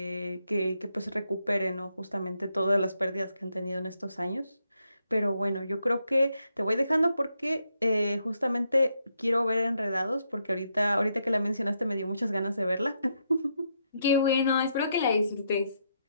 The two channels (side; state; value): both; inverted; correlation -0.79